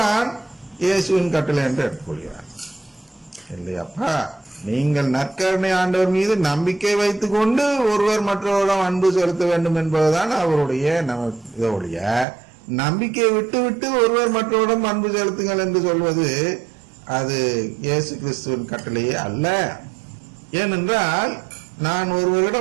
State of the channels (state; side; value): drops out; left; at 12.2 s